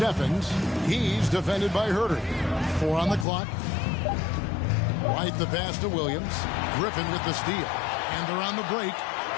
He's defended by Herder. 4 on the clock. White the pass to Williams. Griffin with the steal. And they're on the break.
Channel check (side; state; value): right; drops out; at 3.2 s